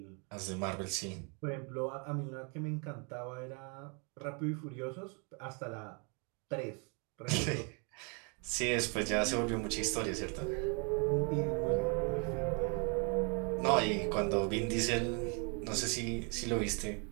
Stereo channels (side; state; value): left; quieter; 36.0 dB